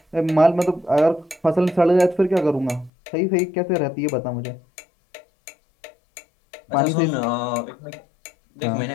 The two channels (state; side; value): drops out; right; at 2.9 s